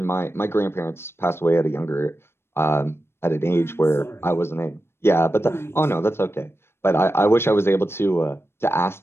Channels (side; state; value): right; late; 0.12 ms